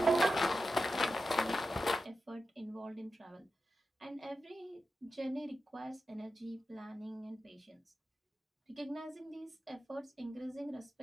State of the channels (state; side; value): normal; both; correlation 0.91